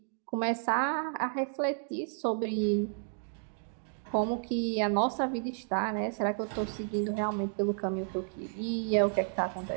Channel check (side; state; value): left; silent; digital silence